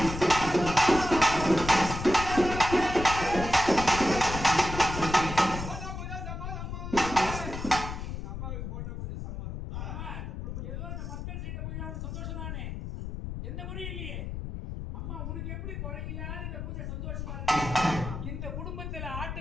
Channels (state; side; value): noise; left; rumble, 6 dB below the sound